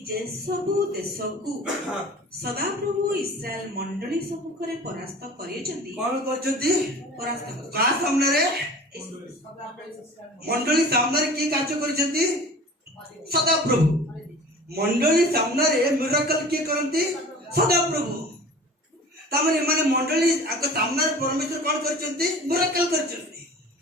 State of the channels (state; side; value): normal; both; correlation 0.41